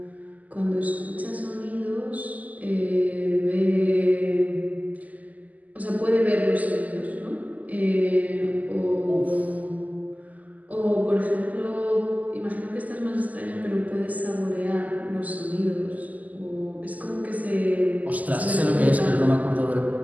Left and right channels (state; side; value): late; left; 0.078 ms